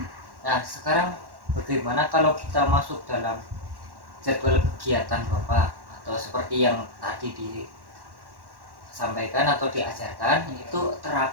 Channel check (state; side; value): late; left; 1.1 ms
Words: Nah sekarang bagaimana kalau kita masuk dalam jadwal kegiatan Bapak atau seperti yang tadi disampaikan atau diajarkan itu